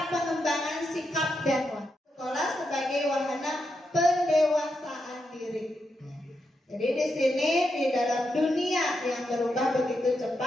pengembangan sikap dan watak. Sekolah sebagai wahana pendewasaan diri. Jadi di sini di dalam dunia yang berubah begitu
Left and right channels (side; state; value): both; normal; correlation 0.84